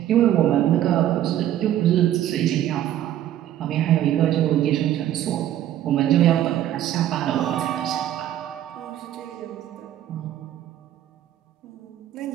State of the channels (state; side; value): quieter; left; 12.1 dB